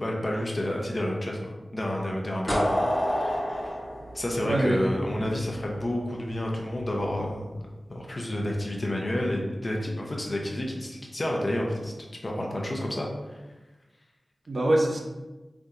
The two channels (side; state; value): both; normal; correlation 0.96